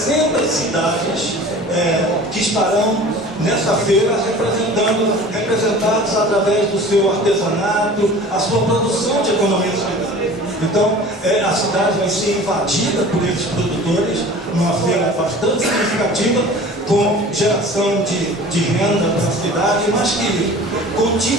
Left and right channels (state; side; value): normal; both; correlation 0.42